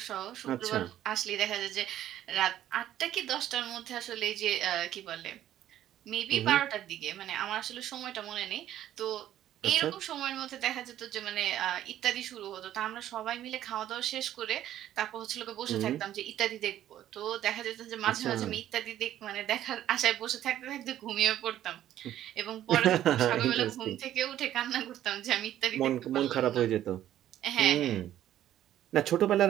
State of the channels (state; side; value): quieter; left; 12.2 dB